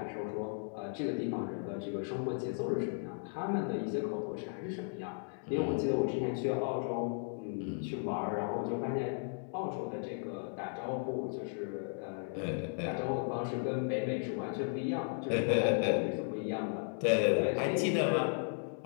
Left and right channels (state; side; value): silent; right; 54 dB below the other